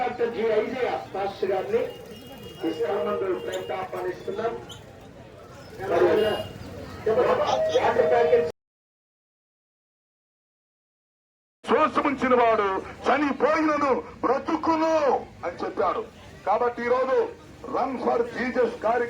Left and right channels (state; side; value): identical; both; correlation 1.00